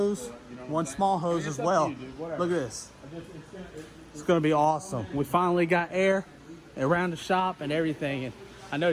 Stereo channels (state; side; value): identical; both; correlation 1.00